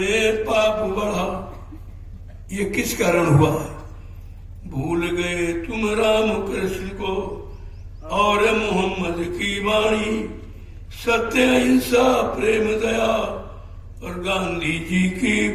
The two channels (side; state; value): both; identical; correlation 1.00